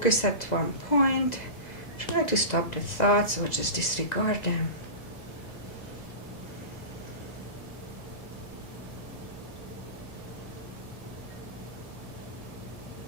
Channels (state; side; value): late; right; 2.0 ms